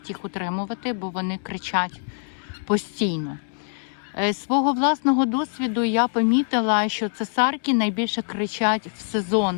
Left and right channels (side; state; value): right; silent; 63 dB below the other